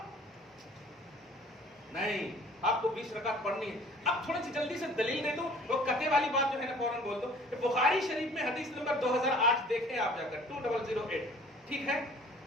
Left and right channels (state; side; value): normal; both; correlation 0.51